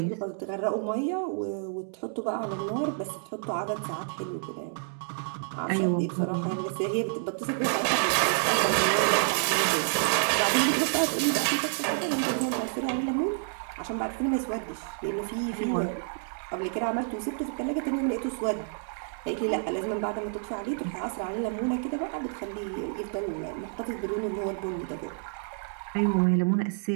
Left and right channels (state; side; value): silent; left; digital silence